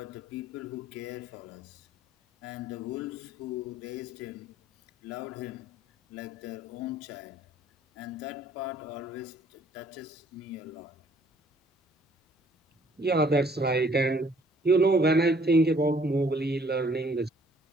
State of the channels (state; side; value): normal; both; correlation 0.60